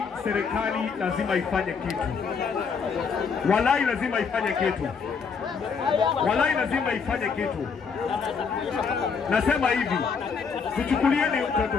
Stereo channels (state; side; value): quieter; right; 5.7 dB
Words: serikali lazima ifanye kitu. Walai lazima ifanye kitu. Walai lazima ifanye kitu. Nasema hivi, tuchukulieni